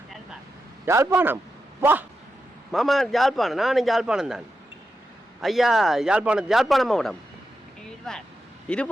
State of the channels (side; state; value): both; normal; correlation 0.88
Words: யாழ்ப்பாணம். வா மாமா யாழ்ப்பாணம். நானும் யாழ்ப்பாணம் தான் ஐயா. யாழ்ப்பாணம் மாவட்டம்